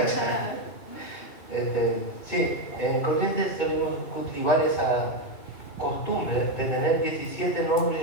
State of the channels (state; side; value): late; right; 2.6 ms